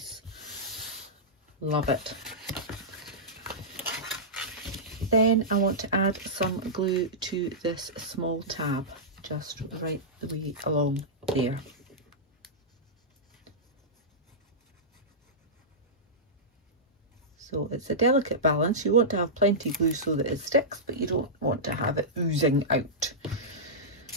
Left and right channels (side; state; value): both; normal; correlation -0.14